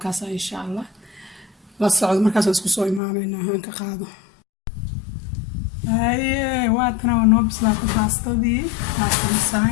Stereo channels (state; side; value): drops out; right; at 3.0 s